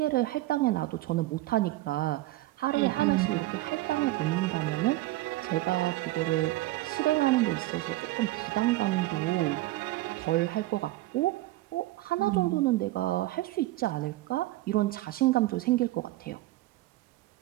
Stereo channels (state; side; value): quieter; left; 17.4 dB